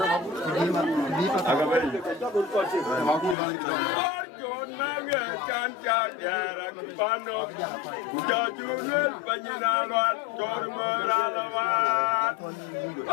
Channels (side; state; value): right; drops out; at 3.4 s